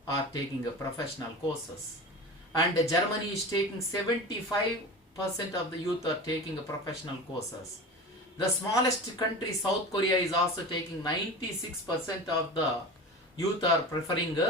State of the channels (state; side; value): normal; both; correlation 0.32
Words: are taking professional courses. And Germany is taking 75% of the youth are taking professional courses. The smallest country, South Korea, is also taking 96% of the youth are preferring